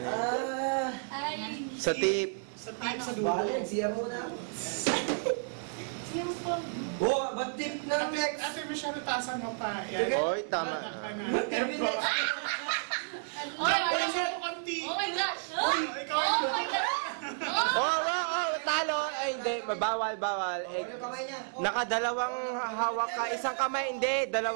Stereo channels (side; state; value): left; silent; digital silence